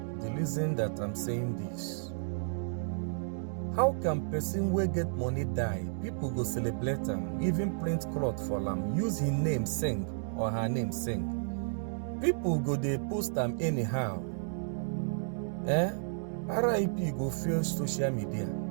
the reason that I'm saying this. How can person wey get money die? People go celebrate them, even print cloth for them, use his name sing or her name sing. People go they post them anyhow. RIP go fill social media.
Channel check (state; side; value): silent; left; digital silence